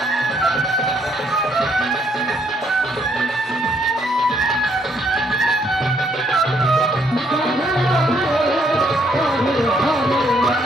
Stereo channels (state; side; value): normal; both; correlation 0.70